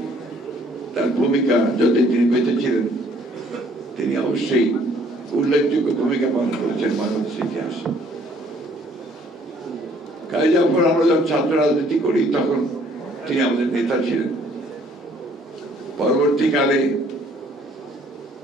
তার ভূমিকা যদি তিনি বেঁচে ছিলেন, তিনি অবশ্যই উল্লেখযোগ্য ভূমিকা পালন করেছেন বাংলাদেশের ইতিহাসে। কাজী জাফর, আমরা যখন ছাত্র রাজনীতি করি তখন তিনি আমাদের নেতা ছিলেন। পরবর্তীকালে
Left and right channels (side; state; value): both; normal; correlation 0.61